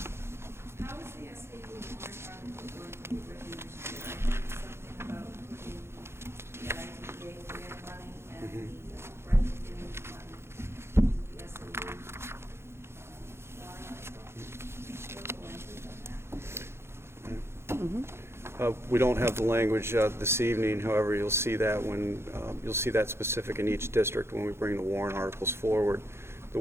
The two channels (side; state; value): left; late; 0.12 ms